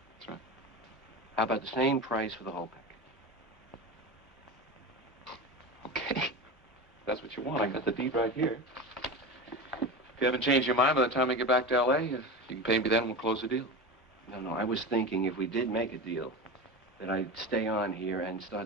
That's right. How about the same price for the whole pack? that's what you want, I got the deed right here. If you haven't changed your mind by the time we get back to L.A., you can pay me then and we'll close the deal. No, I was thinking if we did make a deal, that I'd stay on here and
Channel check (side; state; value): both; normal; correlation 0.26